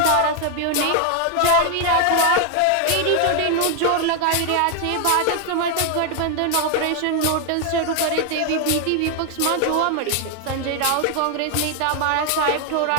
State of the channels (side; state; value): both; different; correlation 0.00